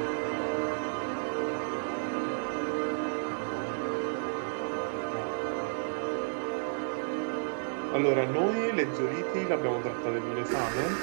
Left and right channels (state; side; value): silent; left; digital silence